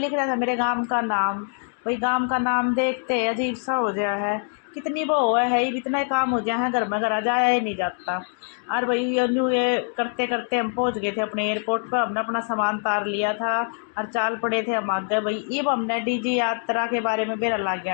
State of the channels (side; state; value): right; silent; 55 dB below the other